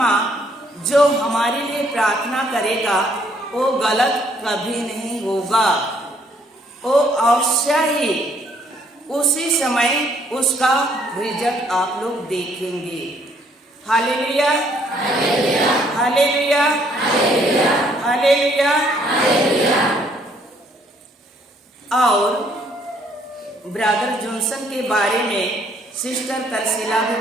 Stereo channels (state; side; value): normal; both; correlation 0.66